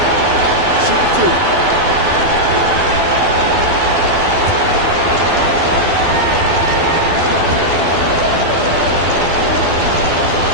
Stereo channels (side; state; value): left; late; 12 ms